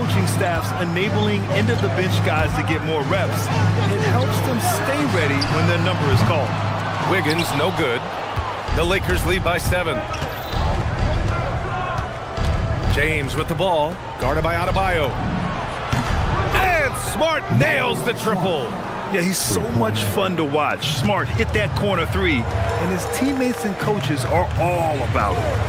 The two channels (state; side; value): identical; both; correlation 1.00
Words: staffs enabling end-of-the-bench guys to get more reps, it helps them stay ready when their number is called. Wiggins, no good. The Lakers lead by 7. James with the ball, guarded by Adebayo. And Smart nails the triple. Yeah, he's so much fun to watch. Smart hit that corner 3, and his teammates and coaches are all about it.